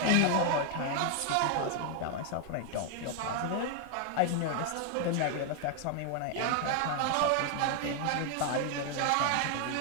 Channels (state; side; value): different; both; correlation 0.00